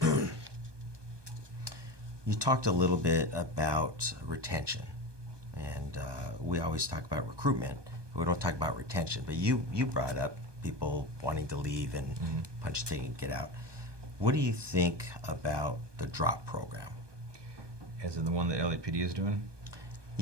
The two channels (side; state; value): left; late; 1.2 ms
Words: You talked a little bit about retention, and we always talk about recruitment, but we don't talk about retention, but you brought up people wanting to leave and punch a ticket and get out. What do you think about the drop program? As in the one that LAPD is doing?